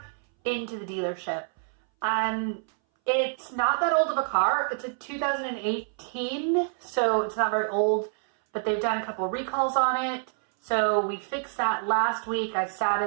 into the dealership. It's not that old of a car. It's a 2018, so it's not very old, but they've done a couple of recalls on it. So we fixed that last week. I sat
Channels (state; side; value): silent; left; 60 dB below the other